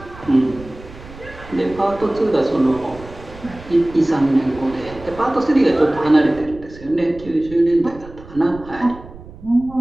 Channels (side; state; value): right; noise; rumble, 18 dB below the sound